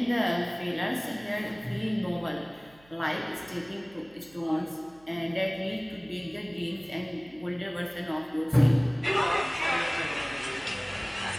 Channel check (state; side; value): noise; right; hum, 27 dB below the sound